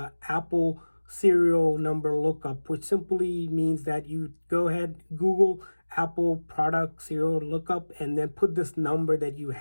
Apple serial number lookup, which simply means that you go ahead, Google Apple product serial lookup, and then put this number that you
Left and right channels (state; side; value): inverted; both; correlation -1.00